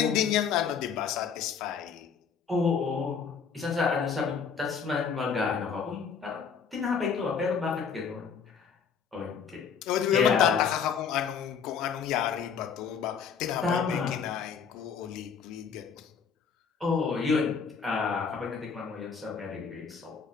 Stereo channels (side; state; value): right; quieter; 6.5 dB